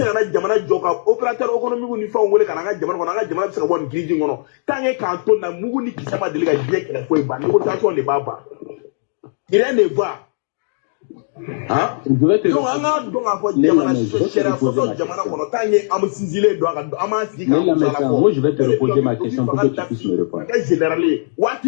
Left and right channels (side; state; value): right; silent; digital silence